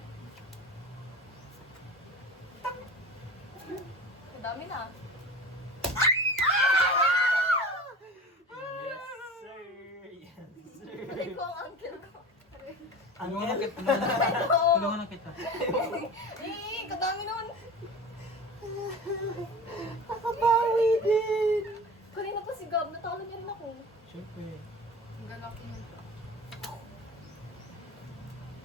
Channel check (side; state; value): both; normal; correlation 0.35